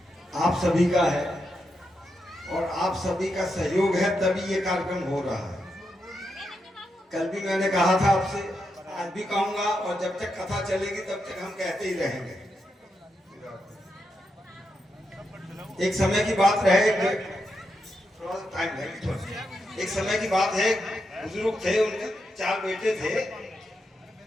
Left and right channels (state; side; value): normal; both; correlation 0.85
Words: आप सभी का है और आप सभी का सहयोग है तभी ये कार्यक्रम हो रहा है। कल भी मैंने कहा था आपसे, आज भी कहूंगा और जब तक कथा चलेगी तब तक हम कहते ही रहेंगे। एक समय की बात रहे, थोड़ा सा टाइम है, एक समय की बात है, बुजुर्ग थे, उनके 4 बेटे थे।